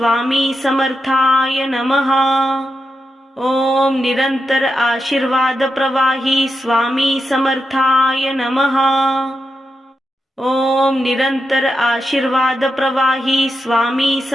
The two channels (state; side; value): normal; both; correlation 0.87